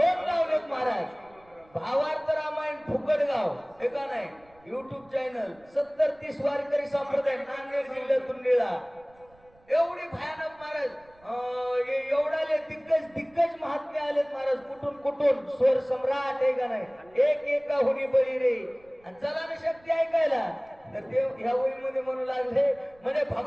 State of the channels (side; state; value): right; noise; rumble, 29 dB below the sound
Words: लावलेत महाराज, भावार्थ रामायण फुकटगाव हे का नाही, युट्यूब चॅनल 70-30 वारकरी संप्रदाय नांदेड जिल्ह्यातून निळा, एवढी भयानक महाराज, एवढाले दिग्गज महात्मे आलेत महाराज, कुठून स्वर सम्राट आहे का नाही, एका हुनी बळी रे. आणि चला ना शक्ती ऐकायला, तर ते ह्या ओळीमध्ये म्हणू लागले, म्हणजे